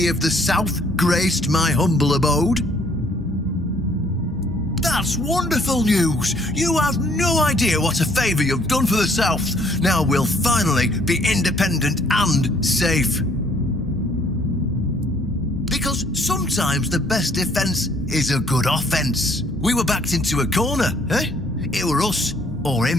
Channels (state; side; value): normal; both; correlation 0.62